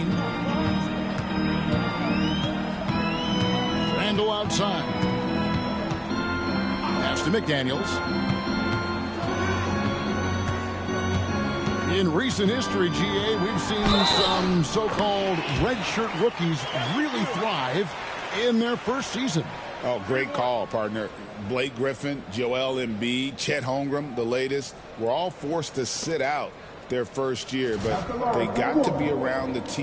Randall outside. Pass to McDaniels. In recent history, GA, we've seen some so-called redshirt rookies really thrive in their first season. Oh, great call, partner. Blake Griffin, Joel Embiid, Chet Holmgren, the latest, were all forced to sit out their first year, but they got to be around the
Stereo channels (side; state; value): both; identical; correlation 1.00